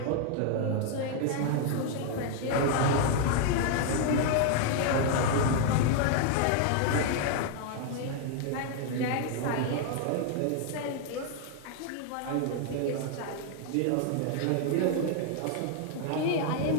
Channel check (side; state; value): both; different; correlation 0.00